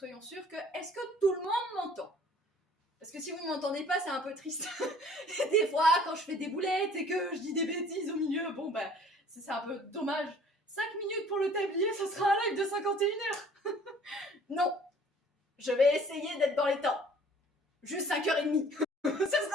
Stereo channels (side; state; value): both; normal; correlation 0.52